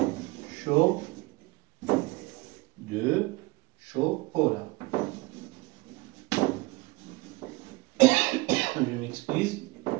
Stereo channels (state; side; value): quieter; left; 23.5 dB